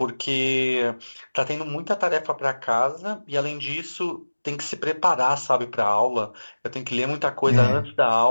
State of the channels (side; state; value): both; inverted; correlation -1.00